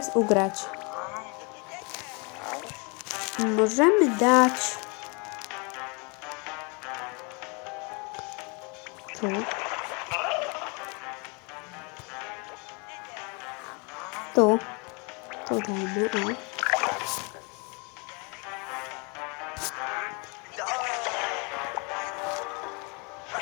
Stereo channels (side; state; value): right; quieter; 31.7 dB